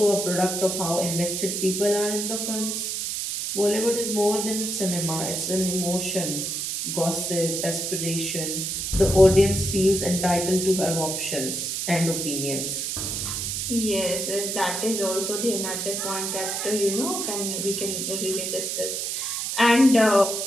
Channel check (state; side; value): noise; right; hiss, 2 dB below the sound